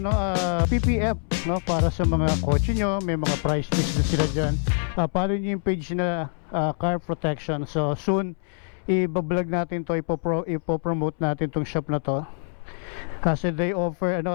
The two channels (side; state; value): right; silent; 62 dB below the other